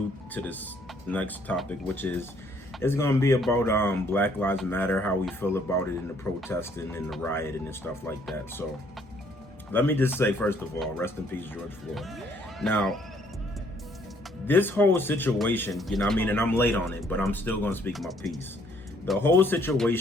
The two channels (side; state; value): both; normal; correlation 0.65